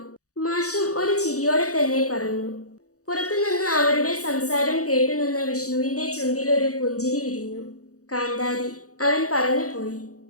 മാഷും ഒരു ചിരിയോടെ തന്നെ പറഞ്ഞു. പുറത്തുനിന്ന് അവരുടെ സംസാരം കേട്ടുനിന്ന വിഷ്ണുവിന്റെ ചുണ്ടിലൊരു പുഞ്ചിരി വിരിഞ്ഞു. കാന്താരി, അവൻ പറഞ്ഞു പോയി.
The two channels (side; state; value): right; late; 0.66 ms